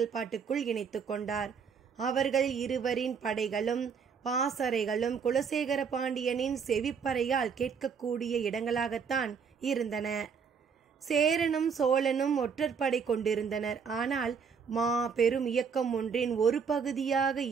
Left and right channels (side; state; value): left; quieter; 6.3 dB